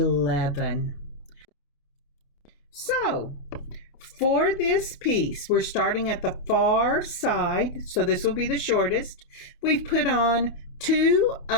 So for this piece, we're starting at the far side, so this will be the shortest. We've put on 2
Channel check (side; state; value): right; late; 28 ms